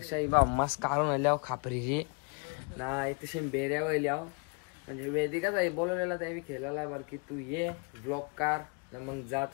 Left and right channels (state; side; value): quieter; right; 35.0 dB